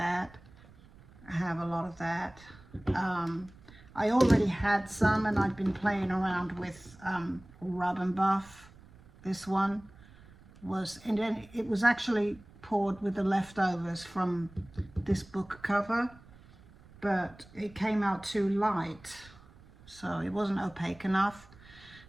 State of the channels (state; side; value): noise; right; rumble, 23 dB below the sound